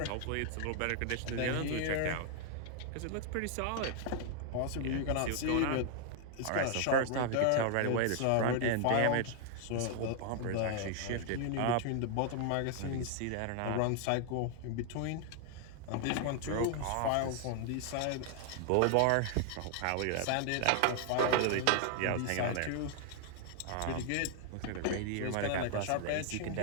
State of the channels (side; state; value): both; different; correlation 0.00